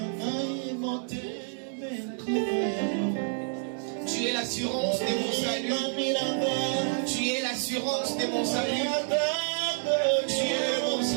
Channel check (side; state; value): left; silent; 59 dB below the other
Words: Tu es l'assurance de mon salut. Tu es l'assurance de mon salut. Tu es mon